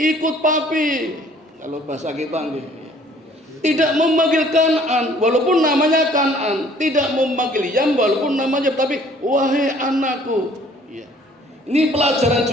papi." Kalau bahasa kita nggih. Tidak memanggil Kan'an walaupun namanya Kan'an, tidak memanggil Yam walaupun namanya, tapi wahai anakku. Ya. Ini pelajaran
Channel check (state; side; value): normal; both; correlation 0.57